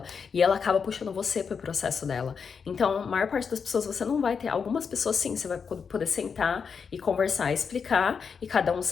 e ela acaba puxando você pro processo dela. Então, a maior parte das pessoas você não vai ter, algumas pessoas sim, você vai poder sentar e conversar, explicar e cada um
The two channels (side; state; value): right; quieter; 6.1 dB